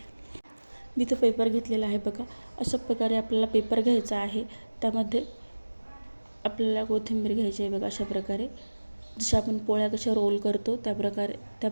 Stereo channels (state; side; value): inverted; both; correlation -1.00